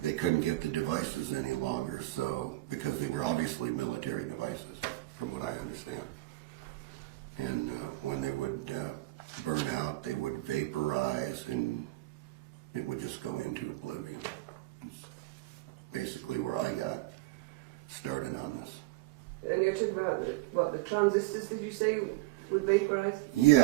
couldn't get the devices any longer, so because they were obviously military devices, from what I understand. And when they would burn out, they would vaporize, and it would just go into oblivion. It's basically where I got started on this. And you're talking about the transistors, did you say, would vaporize?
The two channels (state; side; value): quieter; left; 18.9 dB